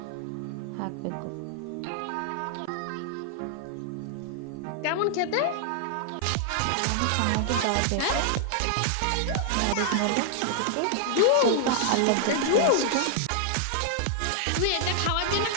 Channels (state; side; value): different; both; correlation 0.00